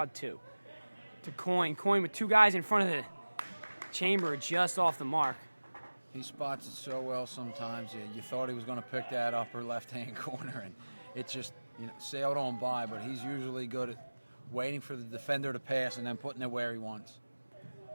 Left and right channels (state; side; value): inverted; both; correlation -1.00